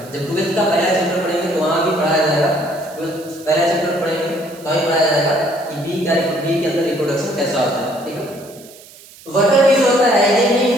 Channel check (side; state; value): right; noise; hiss, 21 dB below the sound